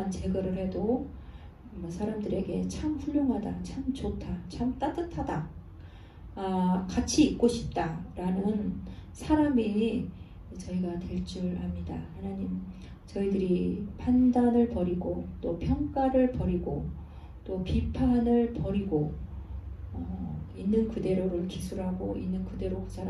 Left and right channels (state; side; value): identical; both; correlation 1.00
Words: 제거를 해도 사람들에게 참 훌륭하다, 참 좋다, 참 따뜻하다, 같이 있고 싶다 라는 사람이 저희가 될 줄 압니다. 하나님, 저희들이 판단을 버리고 또 평가를 버리고 또 비판을 버리고 있는 그대로를 기술하고 있는 그대로 그